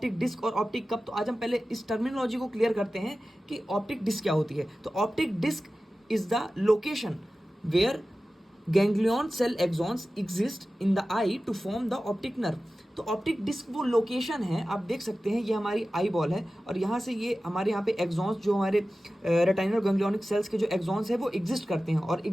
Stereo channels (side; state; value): both; normal; correlation 0.95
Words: डिस्क और ऑप्टिक कप, तो आज हम पहले इस टर्मिनोलॉजी को क्लियर करते हैं कि ऑप्टिक डिस्क क्या होती है। तो optic disc is the location where ganglion cell axons exist in the eye to form the optic nerve. तो ऑप्टिक डिस्क वो लोकेशन है, आप देख सकते हैं ये हमारी आई बॉल है और यहाँ से ये हमारे यहाँ पे एक्सॉन्स जो हमारे रेटिनल गैंग्लियोनिक सेल्स के जो एक्सॉन्स है वो एग्जिस्ट करते हैं, और